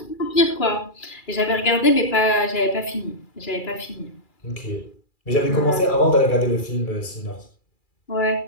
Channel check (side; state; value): right; late; 2.3 ms